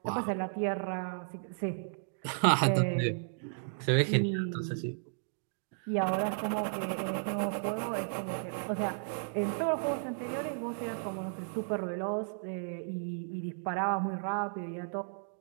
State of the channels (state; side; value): silent; left; digital silence